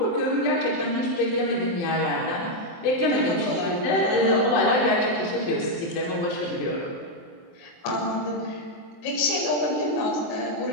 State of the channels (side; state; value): right; late; 23 ms